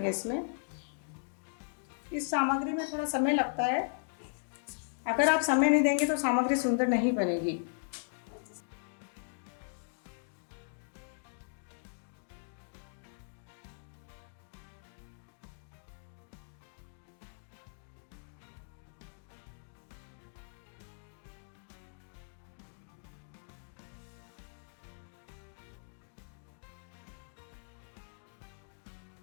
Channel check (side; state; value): right; silent; digital silence